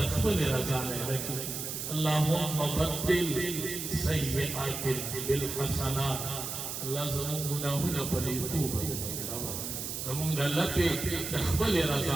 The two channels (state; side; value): noise; right; hiss, 5 dB below the sound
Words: خپل رضا لکه اللهم بدل سیئات بالحسنات الله زموږ ګناهونه په توبه زموږ د الله په خپل